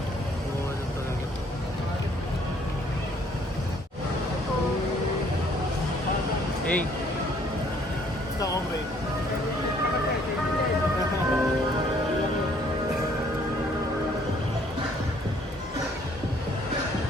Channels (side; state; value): both; normal; correlation 0.62